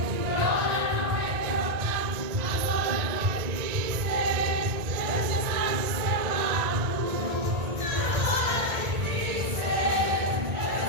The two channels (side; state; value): left; late; 1.9 ms